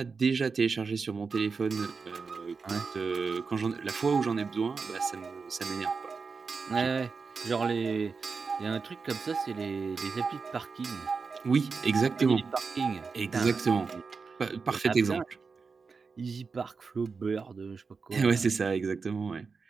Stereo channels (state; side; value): quieter; left; 4.9 dB